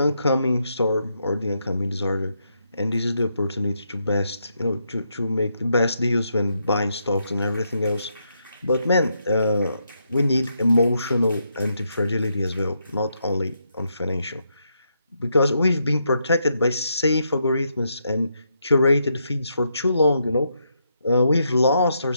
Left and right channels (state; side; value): inverted; both; correlation -0.80